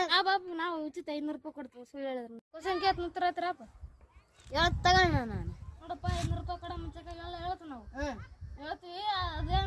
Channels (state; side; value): identical; both; correlation 1.00